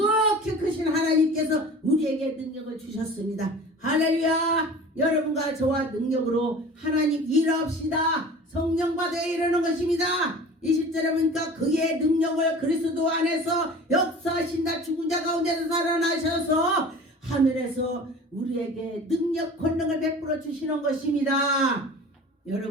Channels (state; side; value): normal; both; correlation 0.40